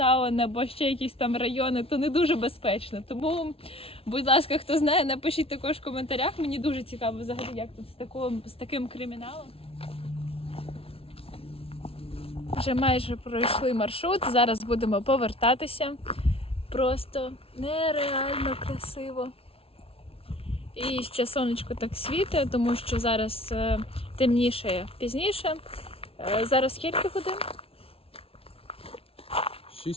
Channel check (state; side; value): late; right; 0.27 ms